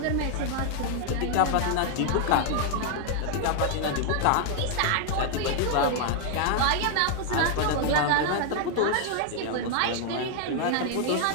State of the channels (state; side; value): different; both; correlation 0.00